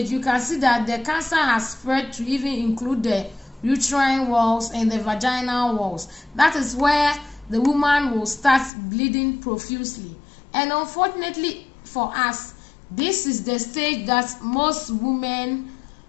you can see that the cancer has spread to even include the uterine walls and the vaginal walls. That is where the woman will start bleeding profusely. And unfortunately for us, this is the stage that most women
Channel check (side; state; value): right; drops out; at 8.7 s